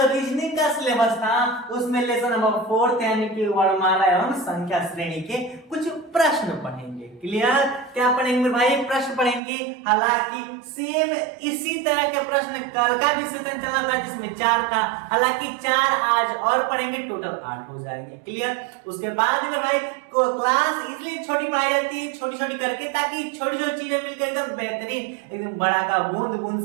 रीजनिंग का सिलेबस था उसमें लेसन नंबर 4 यानी कि वर्णमाला एवं संख्या श्रेणी के कुछ प्रश्न पढ़ेंगे। क्लियर? क्या पढ़ेंगे मेरे भाई? प्रश्न पढ़ेंगे। हालांकि सेम इसी तरह के प्रश्न कल का भी सेशन चला था जिसमें 4 था, हालांकि 4 आज और पढ़ेंगे, टोटल 8 हो जाएंगे। क्लियर? उसके बाद मेरे भाई को क्लास इसलिए छोटी पढ़ाई जाती है, छोटी छोटी करके, ताकि छोटी छोटी चीजें मिलकर एकदम बेहतरीन, एकदम बड़ा का बूंद बूंद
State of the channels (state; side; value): drops out; left; at 9.4 s